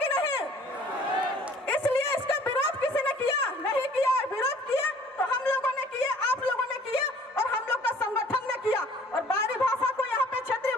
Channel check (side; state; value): both; normal; correlation 0.54